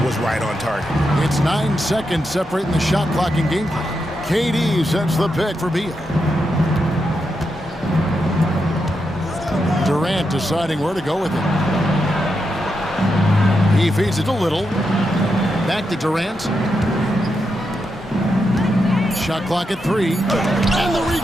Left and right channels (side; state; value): both; normal; correlation 0.85